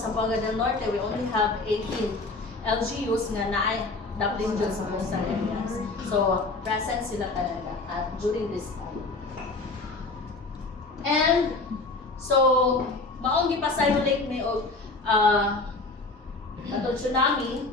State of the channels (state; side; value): quieter; right; 3.4 dB